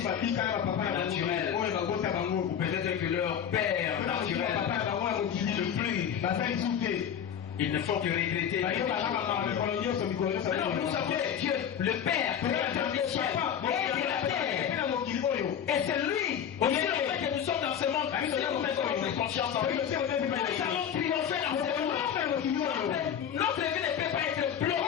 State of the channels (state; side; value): quieter; right; 8.7 dB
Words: naturel. Ou peut-être que leur père naturel ne plus. Ils ne font que regretter. Non, nous savons que Dieu, le Père, Créateur du ciel et de la terre. Et c'est lui, aussi le fait que nous sommes dans ce monde, nous devons mettre notre conscience en lui. Nous allons triompher dans ce monde. Notre vie ne peut pas être